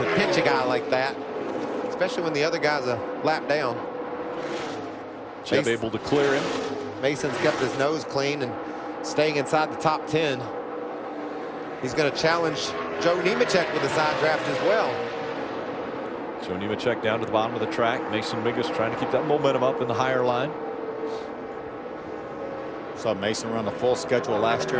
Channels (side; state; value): both; identical; correlation 1.00